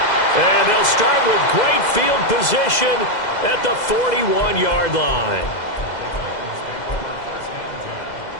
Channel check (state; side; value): late; right; 2.0 ms